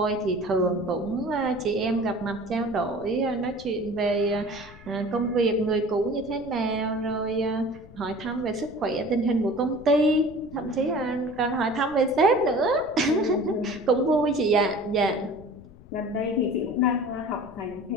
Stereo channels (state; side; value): noise; left; rumble, 20 dB below the sound